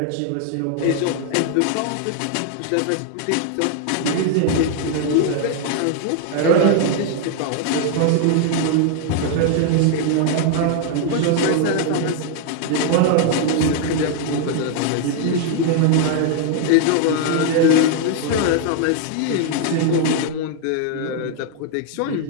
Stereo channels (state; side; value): different; both; correlation 0.00